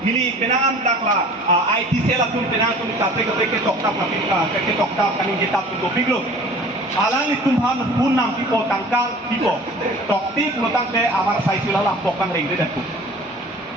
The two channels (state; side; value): normal; both; correlation 0.45